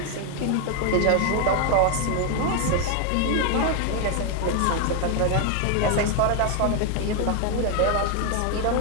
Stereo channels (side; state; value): both; different; correlation 0.01